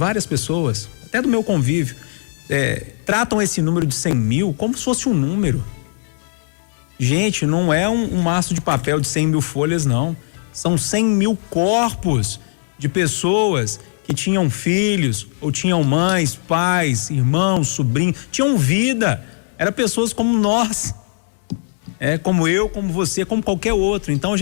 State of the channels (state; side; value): silent; right; digital silence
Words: pessoas, até do meu convívio, tratam esse número de 100 mil como se fosse um número. Gente, não é um maço de papel de 100 mil folhas, não. São 100 mil corpos de pessoas que tinham filhos, ou tinham mães, pais, irmãos, sobrinhos, tinham vida. Eram pessoas como nós, como eu, como você, como qualquer outro. Então a